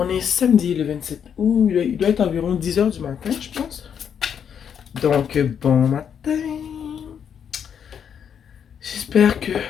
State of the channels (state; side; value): quieter; right; 8.0 dB